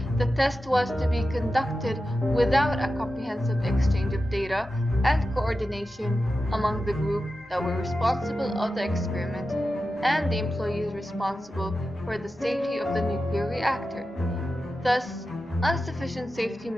the test was to be conducted without a comprehensive exchange of data and coordination among the group that were responsible of the experiment and the employees responsible for the safety of the nuclear reactor. Thus, insufficient safety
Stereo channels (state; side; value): normal; both; correlation 0.92